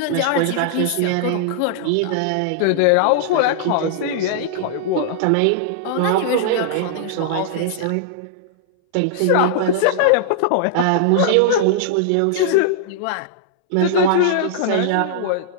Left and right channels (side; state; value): both; different; correlation -0.01